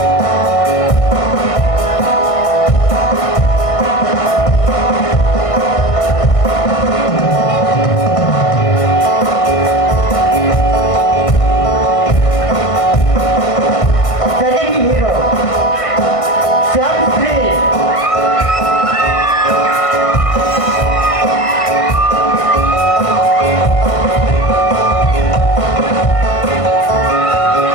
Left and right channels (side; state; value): right; late; 1.5 ms